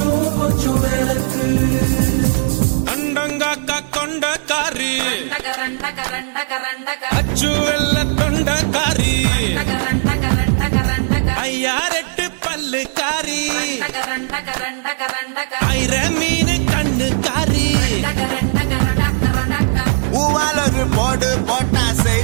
கொஞ்சம் விளக்கு அண்டங்காக்கா கொண்ட காரி அச்சு வெள்ள தொண்ட காரி ஐயா ரெட்டு பல்லு காரி ஐர மீன் கண்ணு காரி பூவால் ஒரு போடு போட்டா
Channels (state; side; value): silent; left; 68 dB below the other